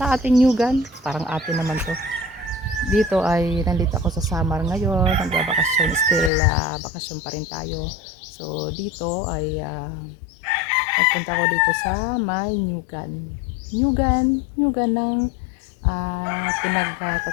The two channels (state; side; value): drops out; right; at 6.3 s